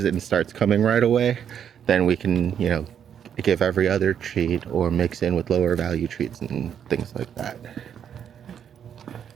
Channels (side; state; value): left; quieter; 8.6 dB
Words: it and starts coming right away, then we can give every other treat or mix in with lower value treats and things like that.